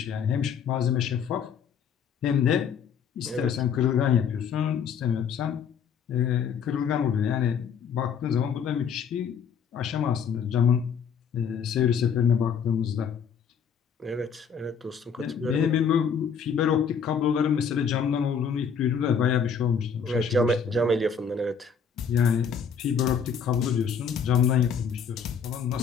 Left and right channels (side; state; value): right; quieter; 6.8 dB